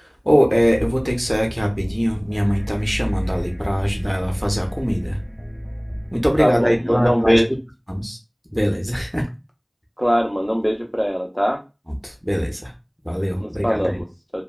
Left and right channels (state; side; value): identical; both; correlation 1.00